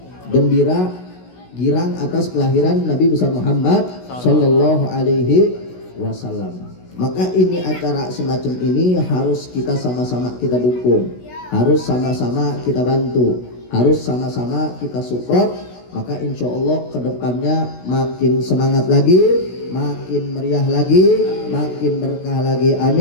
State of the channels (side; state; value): right; late; 16 ms